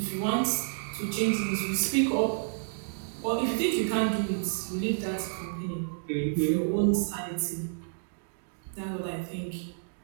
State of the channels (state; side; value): silent; left; digital silence